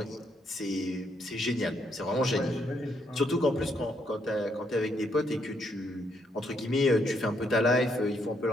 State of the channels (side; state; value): both; normal; correlation 0.74